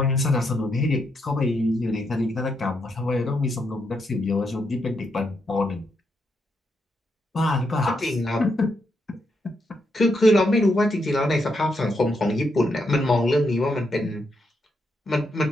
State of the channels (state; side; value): normal; both; correlation 0.80